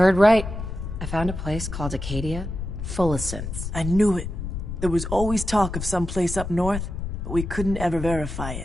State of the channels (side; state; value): left; noise; rumble, 6 dB below the sound